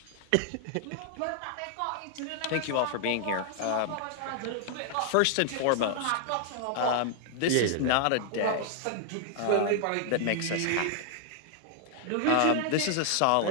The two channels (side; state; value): both; different; correlation 0.00